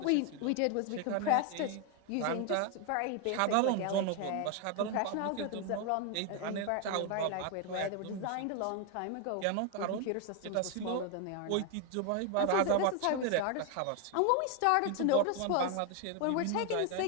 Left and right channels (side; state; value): both; different; correlation 0.01